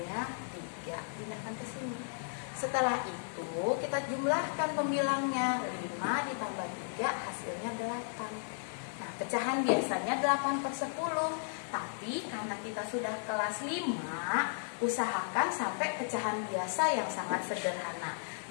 3. Pindahkan ke sini. Setelah itu kita jumlahkan pembilangnya. 5 ditambah 3 hasilnya 8. Nah, pecahan biasanya 8/10. Tapi karena kita sudah kelas 5, usahakan sampai pecahan biasa yang sangat sederhana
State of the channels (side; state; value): right; silent; digital silence